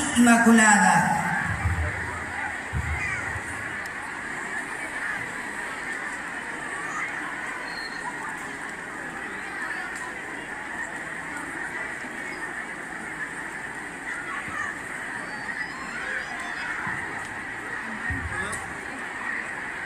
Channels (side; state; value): both; identical; correlation 1.00